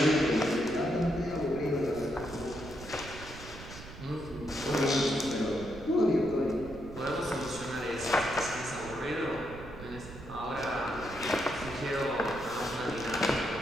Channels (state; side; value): noise; right; rumble, 14 dB below the sound